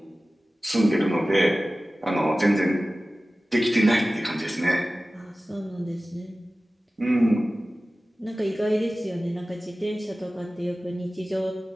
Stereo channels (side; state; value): both; normal; correlation 0.96